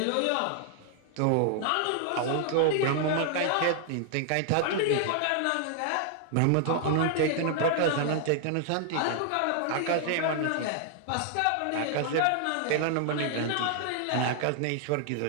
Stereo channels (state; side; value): different; both; correlation 0.00